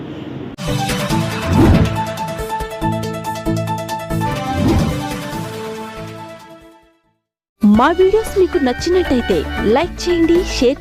మా వీడియోస్ మీకు నచ్చినట్టయితే లైక్ చేయండి, షేర్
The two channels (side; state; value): both; identical; correlation 1.00